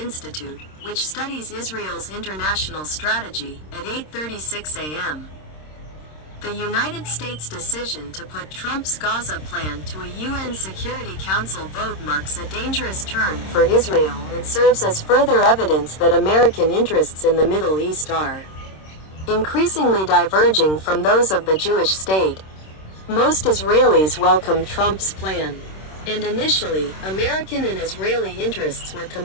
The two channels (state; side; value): late; right; 26 ms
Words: which studies Israel's international strategy, at 8:36 a.m. The United States' decision to put Trump's Gaza plan to a UN Security Council vote marks a dangerous turn for Israel and serves as further evidence that American interests in the Middle East are increasingly diverging from those of the Jewish state. Most Israelis welcomed Trump's plan, and initially, American and Israeli interests were